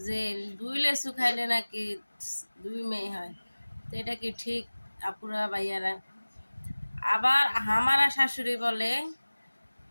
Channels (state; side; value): inverted; both; correlation -1.00